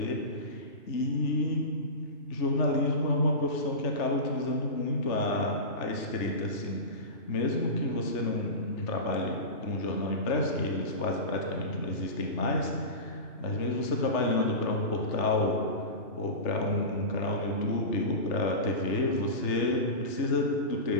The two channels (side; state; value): right; late; 3.3 ms